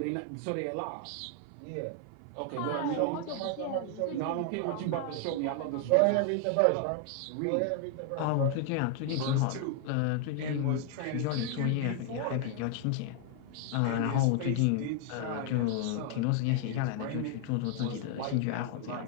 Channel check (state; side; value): different; both; correlation 0.00